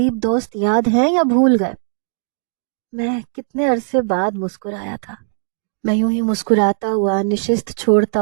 دوست یاد ہیں یا بھول گئے؟ میں کتنے عرصے بعد مسکرایا تھا۔ میں یوں ہی مسکراتا ہوا نشست چھوڑتا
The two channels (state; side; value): silent; left; digital silence